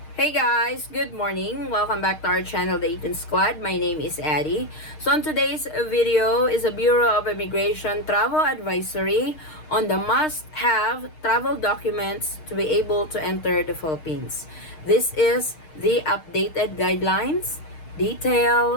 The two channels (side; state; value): right; late; 6.5 ms